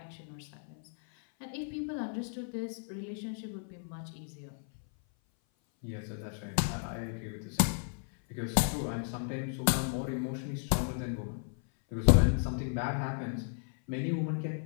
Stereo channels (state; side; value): silent; right; 55 dB below the other